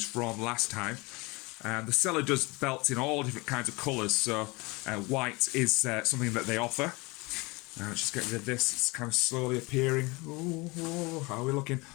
from last time. The seller does belts in all different kinds of colours, so white is something that they offer. Let's just get rid of this. It's kind of slowly appearing. Ooh, how are we looking?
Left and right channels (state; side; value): quieter; right; 25.2 dB